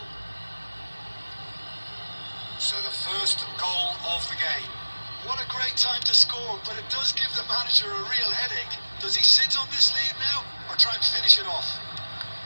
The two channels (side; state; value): both; inverted; correlation -1.00